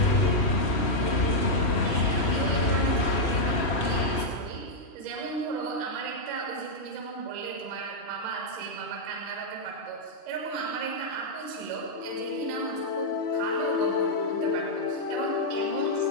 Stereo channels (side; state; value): right; late; 3.1 ms